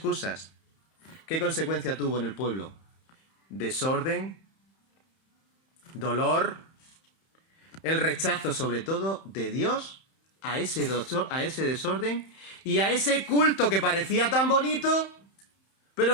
¿Qué consecuencia tuvo en el pueblo? Desorden, dolor, el rechazo sobre todo de Dios a ese desorden y a ese culto que parecía tan bonito,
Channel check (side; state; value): right; late; 31 ms